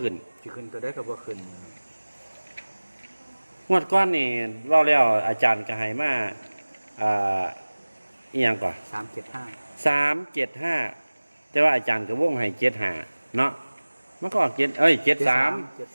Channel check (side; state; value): both; inverted; correlation -1.00